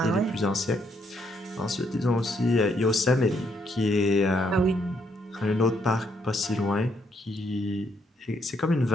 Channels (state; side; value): normal; both; correlation 0.73